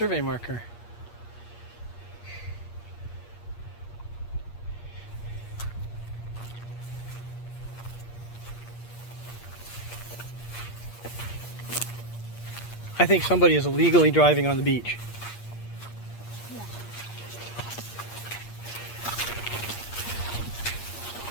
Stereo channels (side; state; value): right; late; 8.5 ms